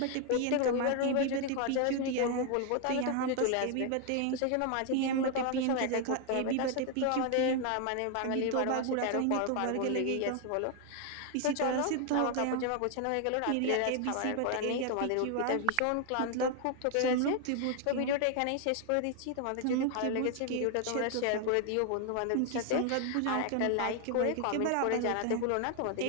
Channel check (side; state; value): both; different; correlation 0.01